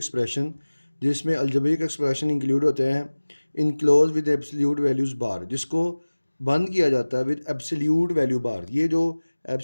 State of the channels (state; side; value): inverted; both; correlation -1.00